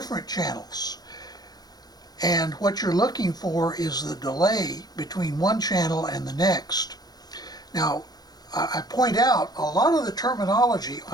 channels. And what you're looking for is the delay between one channel and the next. Now, I point out a lot of the terminology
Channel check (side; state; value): right; late; 0.19 ms